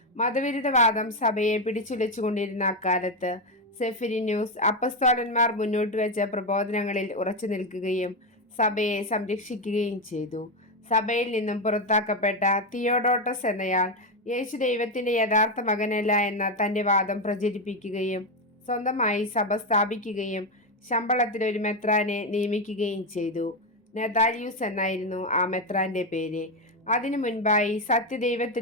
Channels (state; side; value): normal; both; correlation 0.09